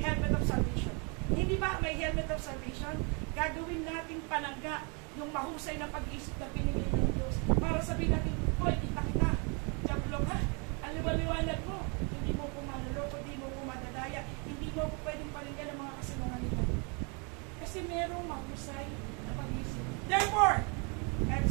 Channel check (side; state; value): left; quieter; 34.3 dB